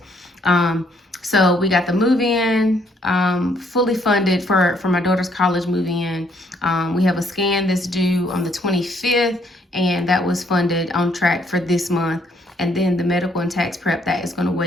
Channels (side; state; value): both; normal; correlation 0.68